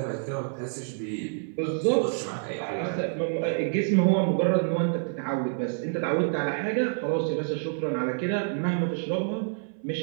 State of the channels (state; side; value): silent; left; 60 dB below the other